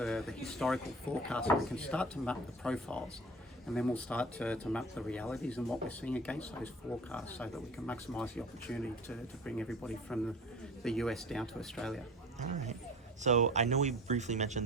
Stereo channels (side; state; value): both; normal; correlation 0.40